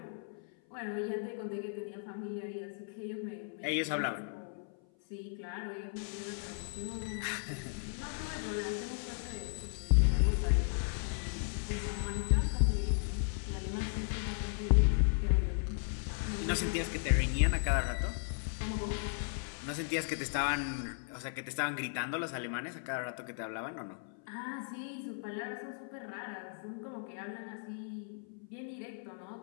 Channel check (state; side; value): silent; right; 54 dB below the other